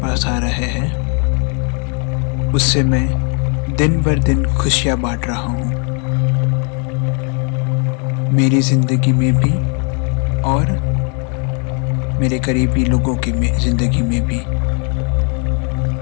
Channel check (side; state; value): right; quieter; 38.4 dB